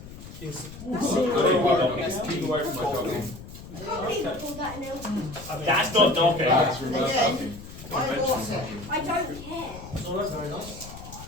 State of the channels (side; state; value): left; noise; rumble, 14 dB below the sound